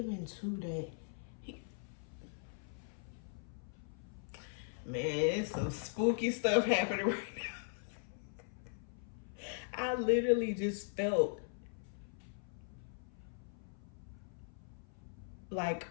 to that. Man, it's some spooky stuff happening right now. I literally just felt like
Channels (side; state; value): right; silent; 51 dB below the other